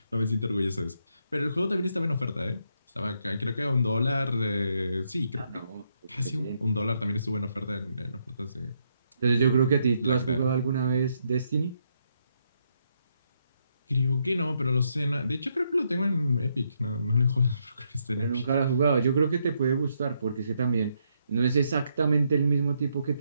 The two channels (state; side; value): inverted; both; correlation -0.77